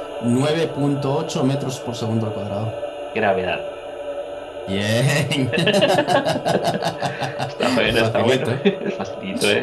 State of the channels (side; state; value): both; identical; correlation 1.00